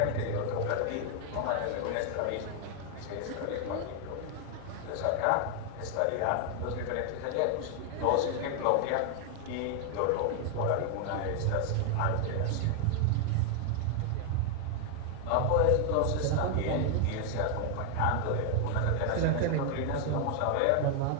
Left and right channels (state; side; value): different; both; correlation 0.00